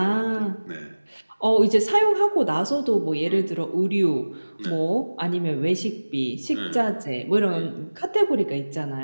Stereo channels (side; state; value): both; inverted; correlation -1.00